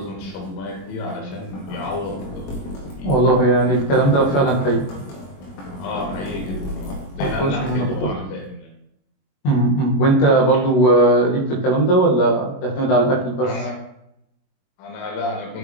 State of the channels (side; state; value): right; late; 21 ms